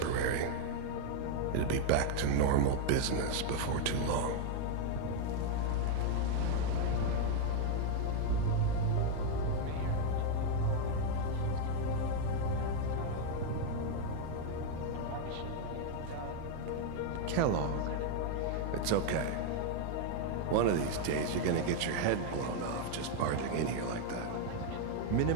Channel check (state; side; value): different; both; correlation 0.00